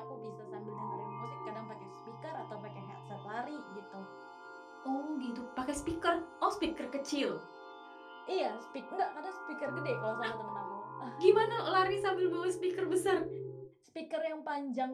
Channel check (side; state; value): both; identical; correlation 1.00